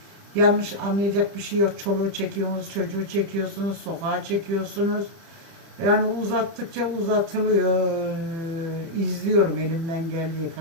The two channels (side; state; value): left; late; 30 ms